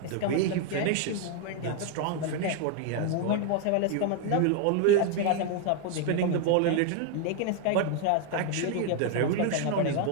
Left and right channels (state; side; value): different; both; correlation 0.00